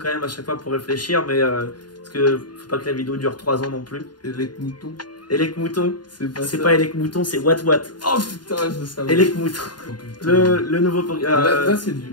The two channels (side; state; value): right; late; 0.71 ms